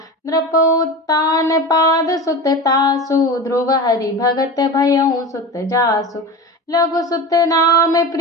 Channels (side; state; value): both; normal; correlation 0.28